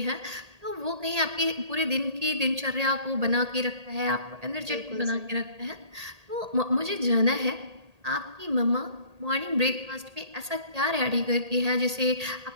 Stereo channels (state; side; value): late; left; 1.8 ms